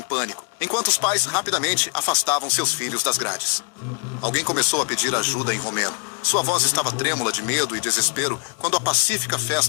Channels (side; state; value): right; quieter; 32.8 dB